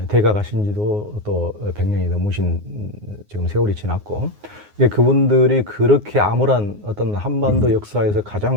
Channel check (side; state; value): left; late; 9.6 ms